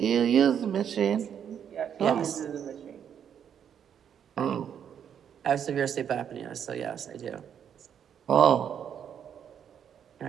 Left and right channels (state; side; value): quieter; left; 8.6 dB